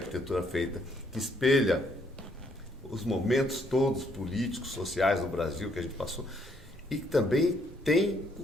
feita, que espelha os momentos todos políticos, sociais do Brasil que a gente passou, e que também tem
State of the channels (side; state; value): both; normal; correlation 0.70